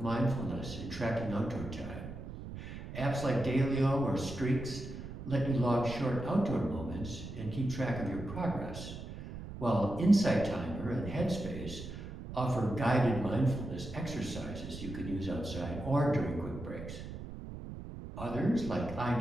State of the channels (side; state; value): right; noise; rumble, 10 dB below the sound